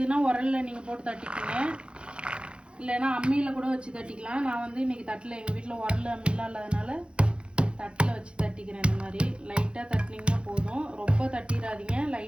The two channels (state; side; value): late; left; 0.056 ms